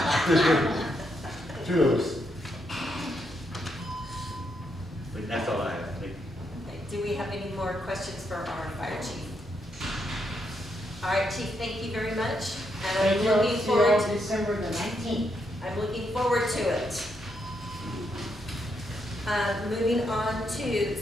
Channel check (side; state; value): both; normal; correlation 0.79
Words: 2 of us. but that's all I have. Thank you. Okay, do we have any more questions for our fire chief? All right, chief, thank you very much. And Thank I'm you. looking See you forward, on December the 19th. I'm looking forward to it. Moving on to